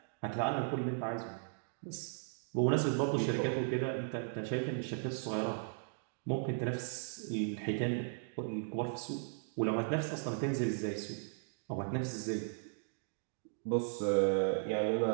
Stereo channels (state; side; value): silent; left; digital silence